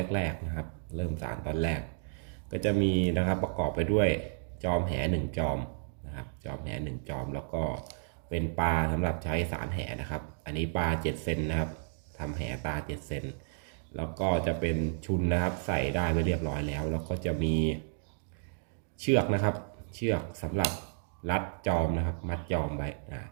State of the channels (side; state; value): left; silent; digital silence